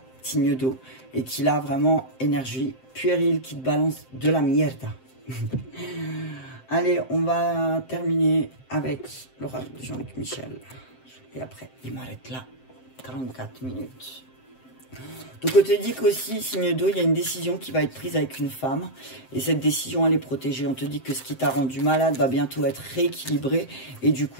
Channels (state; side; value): late; right; 7.7 ms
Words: signe d'eau, et qui a vraiment énergie puérile, qui te balance de la mierda. Allez, on va terminer avec l'oracle de Jean-Luc Michel. Et après, il m'arrête là. 44 minutes. Donc, on te dit qu'aussi, signe d'eau, il y a une décision qui va être prise avec une femme. Et cette décision, elle est protégée. On te dit que ce qui t'a rendu malade va bientôt être rééquilibré. Et du